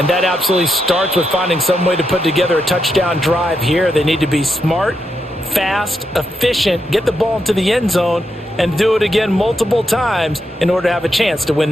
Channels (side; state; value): both; normal; correlation 0.83